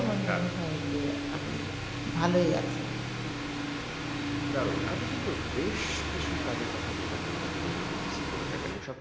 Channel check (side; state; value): both; identical; correlation 1.00